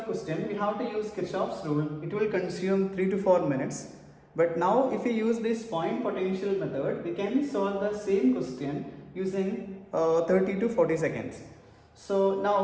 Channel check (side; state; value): both; identical; correlation 1.00